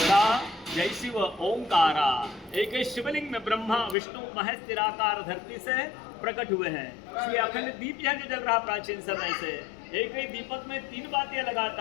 जय शिव ओंकारा। एक ही शिवलिंग में ब्रह्मा विष्णु महेश निराकार धरती से प्रकट हुए हैं। इसलिए अखंड दीप यह जो जल रहा प्राचीन समय से, एक ही दीपक में 3 बातें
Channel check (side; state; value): right; drops out; at 4.0 s